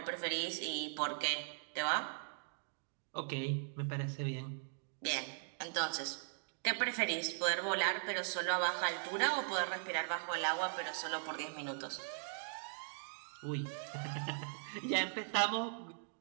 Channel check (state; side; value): silent; left; digital silence